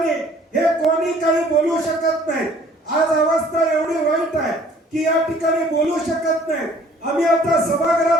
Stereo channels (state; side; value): normal; both; correlation 0.56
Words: हे कोणी काही बोलू शकत नाही. आज अवस्था एवढी वाईट आहे की या ठिकाणी बोलू शकत नाही. आम्ही आता